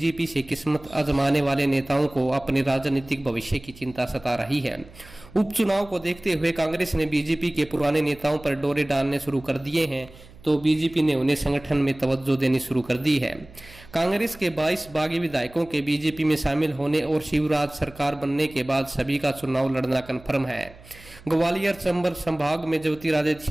से किस्मत आजमाने वाले नेताओं को अपने राजनीतिक भविष्य की चिंता सता रही है। उपचुनाव को देखते हुए कांग्रेस ने बीजेपी के पुराने नेताओं पर डोरे डालने शुरू कर दिए हैं, तो बीजेपी ने उन्हें संगठन में तवज्जो देनी शुरू कर दी है। कांग्रेस के 22 बागी विधायकों के बीजेपी में शामिल होने और शिवराज सरकार बनने के बाद सभी का चुनाव लड़ना कन्फर्म है। ग्वालियर चंबल संभाग में ज्योतिरादित्य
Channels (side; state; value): right; noise; hum, 22 dB below the sound